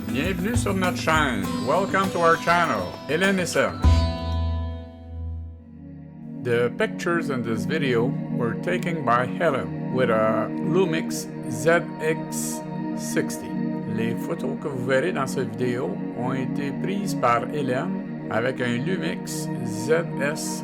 Bienvenue sur notre chaîne. Welcome to our channel. Hélène et Serge. The pictures in this video were taken by Hélène with a Lumix ZS60. Les photos que vous verrez dans cette vidéo ont été prises par Hélène avec un Lumix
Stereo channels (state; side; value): identical; both; correlation 1.00